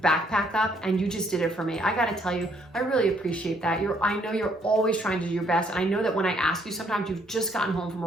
backpack up, and you just did it for me. I got to tell you, I really appreciate that. I know you're always trying to do your best, and I know that when I ask you, sometimes you've just gotten home from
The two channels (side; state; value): both; normal; correlation 0.68